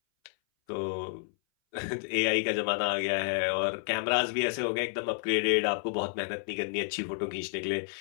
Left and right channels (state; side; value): silent; right; 58 dB below the other